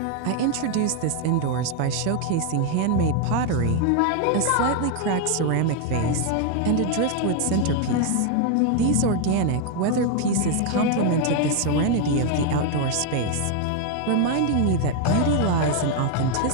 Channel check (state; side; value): different; both; correlation 0.01